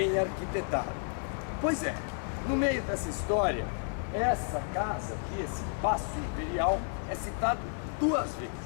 arquitetada. Pois é, no meio dessa história, essa casa aqui, esse Paço Imperial, é citado duas vezes.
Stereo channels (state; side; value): silent; right; 57 dB below the other